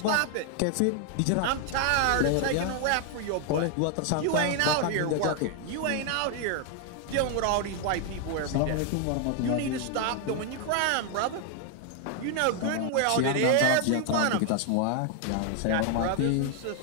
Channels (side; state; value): both; different; correlation 0.00